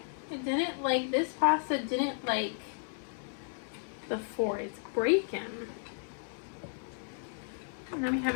It didn't like, this pasta didn't like the 4. It's breaking. And then we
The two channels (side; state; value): right; silent; 55 dB below the other